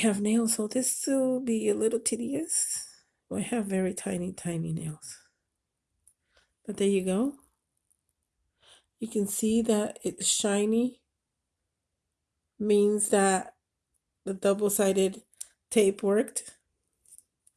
nails, so this will be a little tedious. I have very tiny nails. But there you go. You can see that it's shiny. Means that the double-sided tape worked.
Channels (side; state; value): both; identical; correlation 1.00